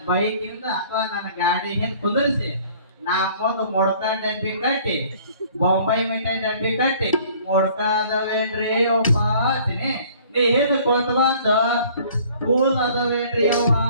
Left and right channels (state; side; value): inverted; both; correlation -0.54